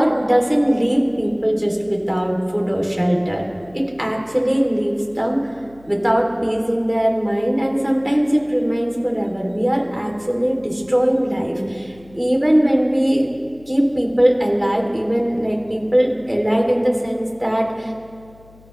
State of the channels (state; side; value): noise; left; hum, 26 dB below the sound